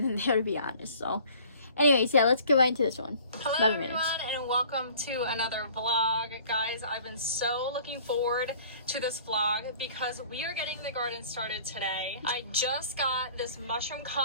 there, to be honest. So anyways, yeah, let's get right into this one. Hello everyone, and welcome to another vlog. Guys, I've been so looking forward to this vlog because we are getting the garden started today. I just got this mushroom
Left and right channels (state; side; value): inverted; both; correlation -0.51